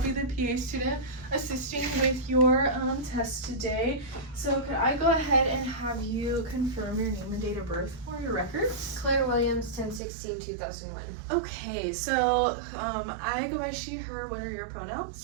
the PA student assisting with your test today. So could I go ahead and have you confirm your name and date of birth for your records? Claire Williams, 10/16/2001. Okay, so I go by she, her. What are your pronouns?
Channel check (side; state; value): left; drops out; at 10.0 s